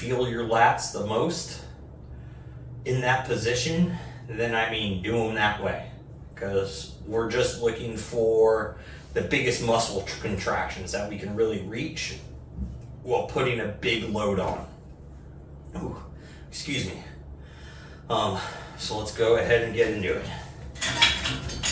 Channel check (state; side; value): identical; both; correlation 1.00